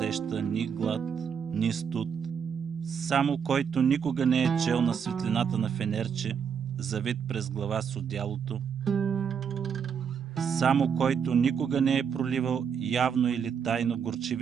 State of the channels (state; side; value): quieter; left; 7.0 dB